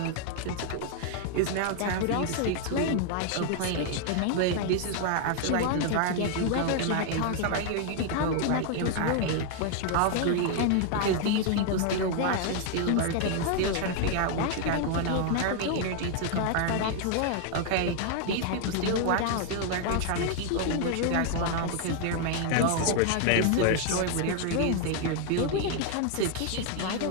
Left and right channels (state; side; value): different; both; correlation 0.00